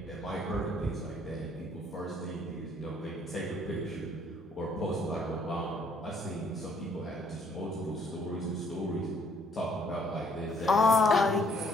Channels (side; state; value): both; normal; correlation 0.64